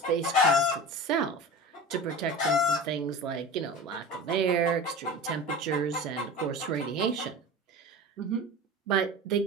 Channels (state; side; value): normal; both; correlation 0.33